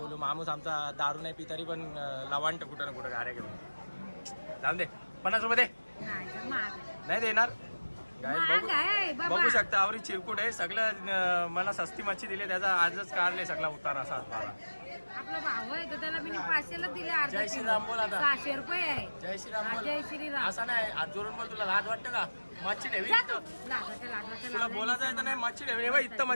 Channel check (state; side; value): inverted; both; correlation -1.00